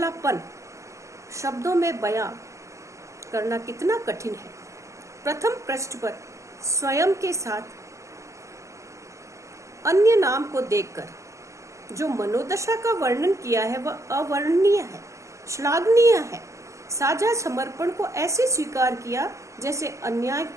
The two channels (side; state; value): left; late; 0.15 ms